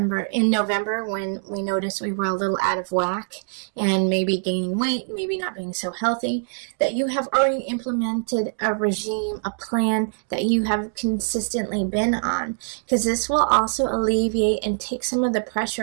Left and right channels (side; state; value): left; silent; digital silence